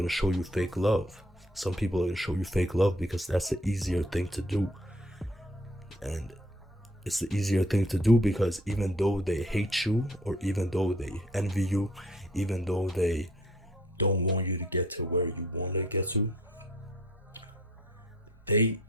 show you fake love. Some people are gonna show you fake love because that's the easier thing to do. And it's the easier thing to do because even though they hate you, or even though they envy you, even though they don't want you to get to where you want to get to, they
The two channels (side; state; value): both; normal; correlation 0.59